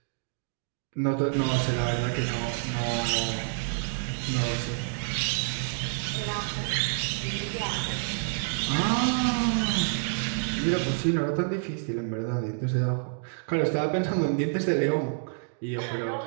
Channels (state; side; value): silent; left; digital silence